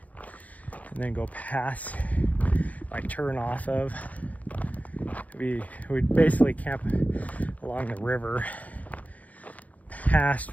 and then go past, like turn off of, we'd basically camp along the river past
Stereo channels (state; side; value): late; right; 0.074 ms